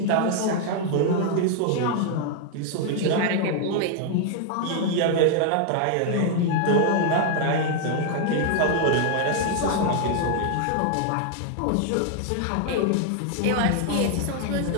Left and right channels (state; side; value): different; both; correlation 0.00